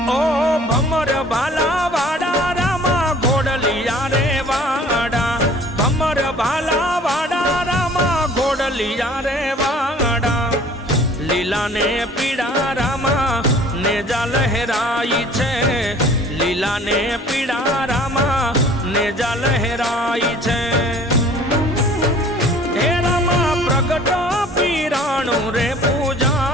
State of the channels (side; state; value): both; normal; correlation 0.50